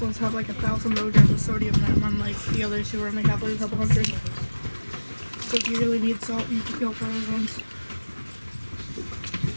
ones have like 1,000 milligrams of sodium in them, unlike the others who only have like a couple hundred. So if you really need salt, you can go for those ones.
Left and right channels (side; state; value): both; inverted; correlation -1.00